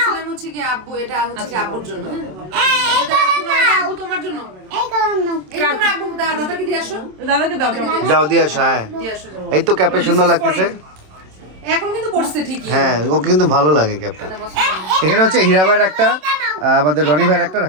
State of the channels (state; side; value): late; left; 27 ms